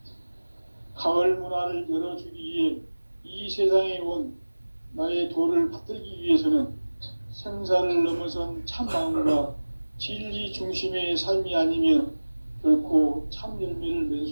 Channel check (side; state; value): both; inverted; correlation -1.00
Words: 가을 문화를 열어주기 위해 이 세상에 온 나의 도를 받들기 위해서는 생사를 넘어선 참마음과 진리 중심의 삶이 아니면 결코 참 열매를 맺을